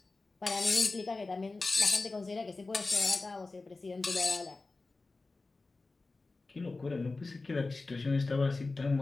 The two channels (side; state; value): right; quieter; 3.5 dB